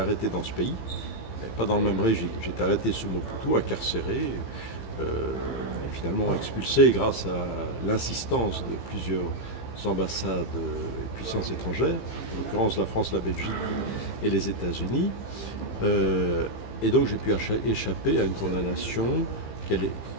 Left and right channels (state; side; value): late; right; 15 ms